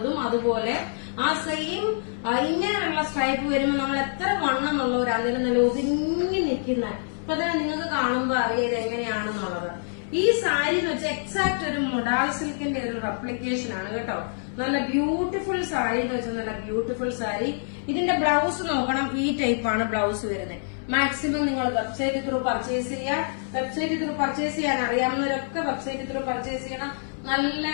അതുപോലെ ആ സെയിം ഇങ്ങനെയുള്ള സ്ട്രൈപ്പ് വരുമ്പോൾ നമ്മൾ എത്ര വണ്ണമെന്നുള്ളവരാണെങ്കിലും നല്ല ഒതുങ്ങി നിൽക്കുന്ന, അപ്പൊ തന്നെ നിങ്ങൾക്ക് കാണുമ്പോ അറിയാം ഇത് എങ്ങനെയാണെന്നുള്ളത്. ഈ സാരി എന്ന് വെച്ചാൽ എക്സാക്ട് ഒരു മൊഡാൾ സിൽക്കിന്റെ ഒരു റെപ്ലിക്കേഷൻ ആണ് കേട്ടോ. നല്ല ബ്യൂട്ടിഫുൾ സാരി എന്ന് വെച്ചാൽ നല്ല ബ്യൂട്ടിഫുൾ സാരി. ഇതിന്റെ ബ്ലൗസ് നോക്കണം, ഈ ടൈപ്പാണ് ബ്ലൗസ് വരുന്നത്. മാക്സിമം നിങ്ങൾ വെബ്സൈറ്റ് ത്രൂ പർച്ചേസ് ചെയ്യുക. വെബ്സൈറ്റ് ത്രൂ പർച്ചേസ് ചെയ്യാൻ അറിയാവുന്നവരൊക്കെ വെബ്സൈറ്റ് ത്രൂ പർച്ചേസ് ചെയ്യണം. നല്ല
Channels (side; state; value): right; silent; 61 dB below the other